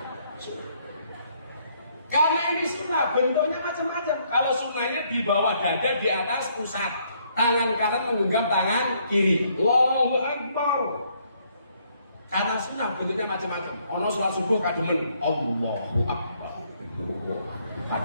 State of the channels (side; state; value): both; inverted; correlation -0.69